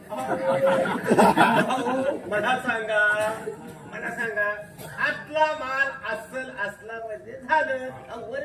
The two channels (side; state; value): both; identical; correlation 1.00